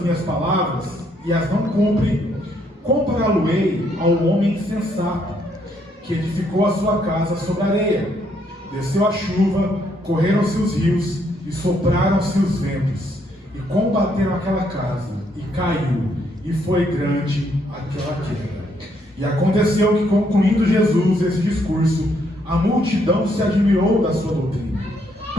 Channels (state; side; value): normal; both; correlation 0.72